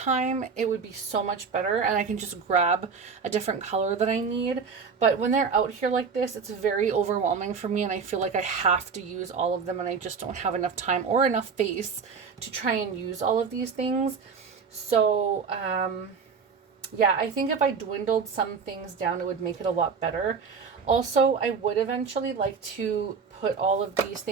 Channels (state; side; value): quieter; left; 5.7 dB